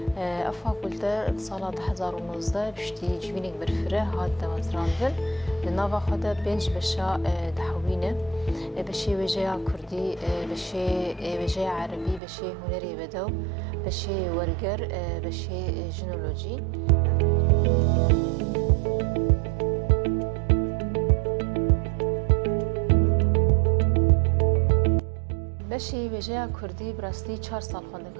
فاکولته سال 2019 پشتی جوینک برفره هات دمزراندن لناوا خدا بنج بشا دحوینه بشي وجه كردي بشي وجه عربي بشي هنري بدو بشي ورقر بشي جنولوجي بشي وجه كردي براستي 4 سال خوانده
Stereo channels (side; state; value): left; drops out; at 12.2 s